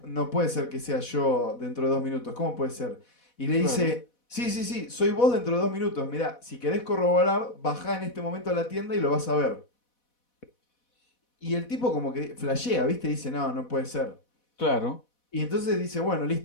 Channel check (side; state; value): right; late; 4.1 ms